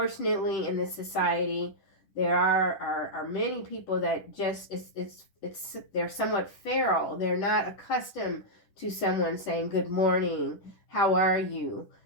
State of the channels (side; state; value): right; late; 10 ms